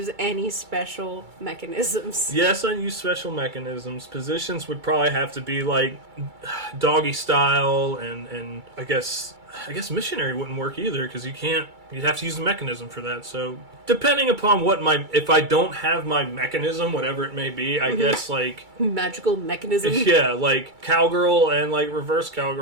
any special mechanisms? Yes, I use special mechanisms. Positions would probably have to be like doggy style, and I guess missionary wouldn't work either, because you'd have to use the mechanism for that. So depending upon if I don't have my mechanism, whatever it may be, I guess like magical mechanism. Yeah, like cowgirl and like reverse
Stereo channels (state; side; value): late; left; 2.3 ms